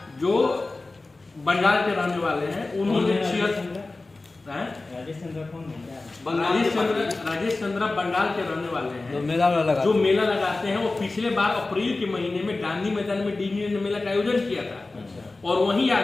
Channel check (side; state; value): right; quieter; 3.3 dB